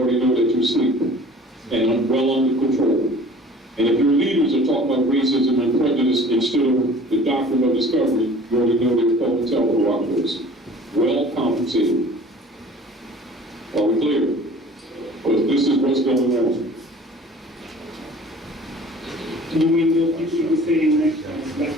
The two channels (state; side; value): normal; both; correlation 0.47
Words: know that you're asleep and well under control. And if your leaders are talking about racism and prejudice in instead of the doctrine of discovery, you already know they're called telco operators. Well compensated. Are we clear? Because this is what's going on. You mean you were saying that